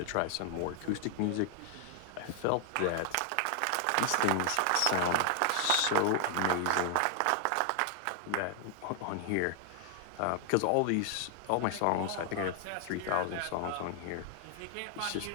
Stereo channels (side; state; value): both; different; correlation 0.00